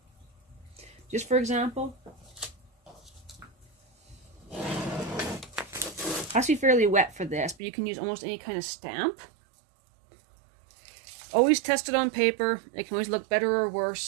Just for example. It has to be fairly wet for this, but you can use almost any kind of stamp. Always test it on paper. It can always look better or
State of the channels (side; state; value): left; drops out; at 7.6 s